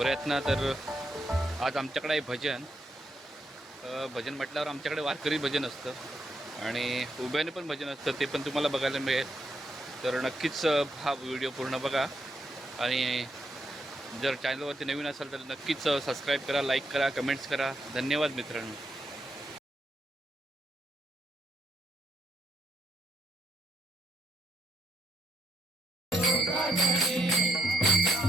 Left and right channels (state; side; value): normal; both; correlation 0.78